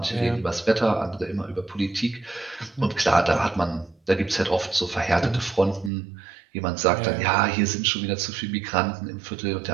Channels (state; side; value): drops out; left; at 5.9 s